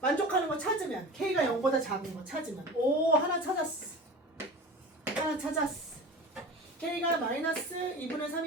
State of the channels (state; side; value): normal; both; correlation 0.34